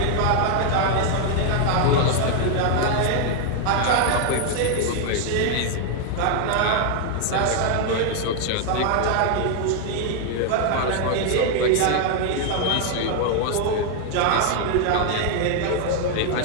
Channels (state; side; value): different; both; correlation 0.00